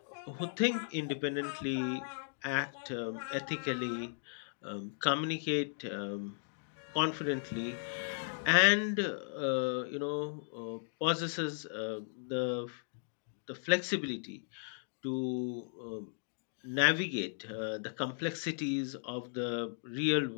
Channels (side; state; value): right; silent; digital silence